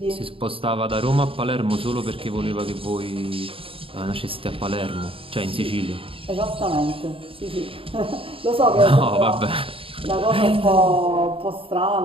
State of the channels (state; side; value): late; left; 0.26 ms